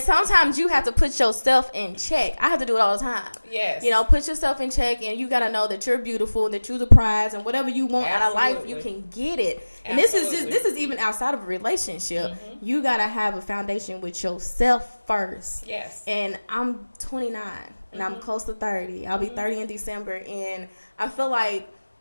sometimes you have to put yourself in check. I have to do it all the time. Yes. You know, put yourself in check, and you got to know that you're beautiful, that you're the prize, and whatever you want out of life, you can get it. And this is even outside of a relationship. You got to have a foundation with yourself first. Yes. And I'm 29. And I'm close to 30. I'll be 30 in December. And I feel like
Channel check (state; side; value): inverted; both; correlation -1.00